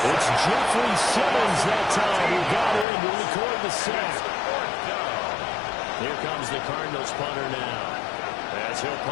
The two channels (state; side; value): drops out; right; at 2.9 s